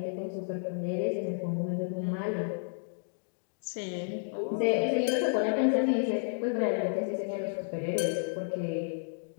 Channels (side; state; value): right; silent; digital silence